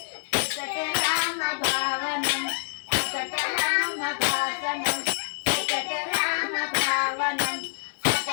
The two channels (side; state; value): right; silent; digital silence